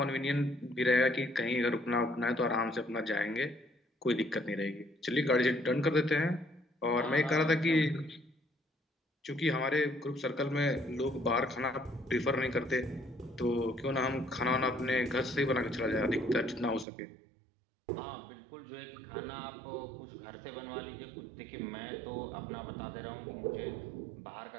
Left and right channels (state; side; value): drops out; left; at 16.9 s